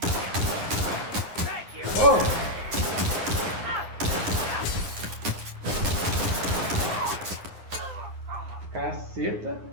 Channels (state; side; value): late; left; 9.5 ms